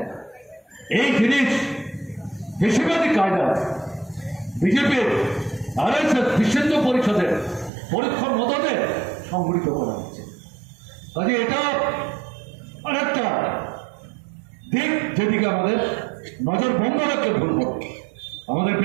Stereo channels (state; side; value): drops out; left; at 7.7 s